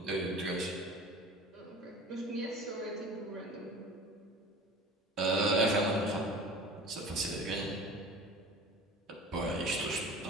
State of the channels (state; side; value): normal; both; correlation 0.40